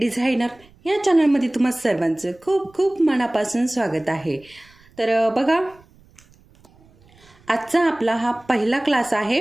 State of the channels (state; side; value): noise; right; rumble, 29 dB below the sound